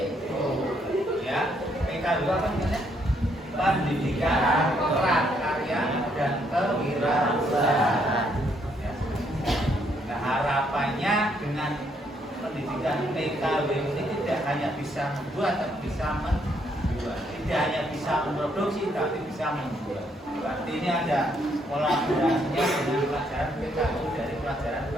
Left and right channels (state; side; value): normal; both; correlation 0.72